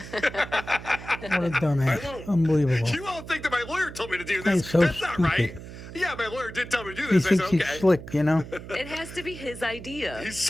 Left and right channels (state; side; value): noise; right; hum, 13 dB below the sound